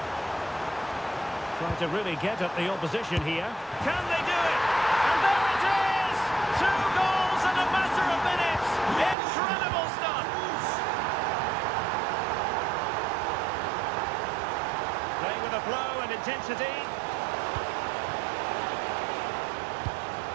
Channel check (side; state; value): left; drops out; at 9.2 s